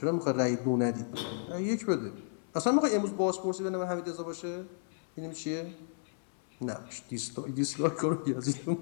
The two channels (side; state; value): right; silent; 56 dB below the other